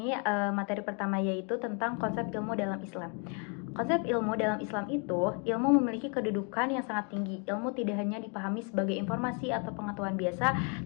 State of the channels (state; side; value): quieter; right; 37.3 dB